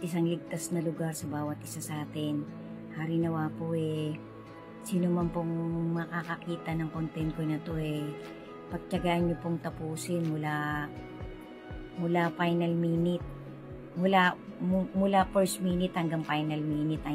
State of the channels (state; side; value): identical; both; correlation 1.00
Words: ligtas na lugar sa bawat isa sa atin. Hari nawa po sino man pong makakakita ng content ko na to pagtiyagaan nyo pong tapusin mula final minute, mula first minute hanggang final minute,